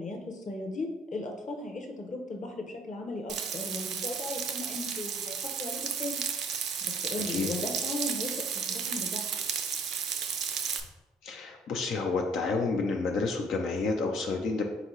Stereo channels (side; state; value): both; normal; correlation 0.57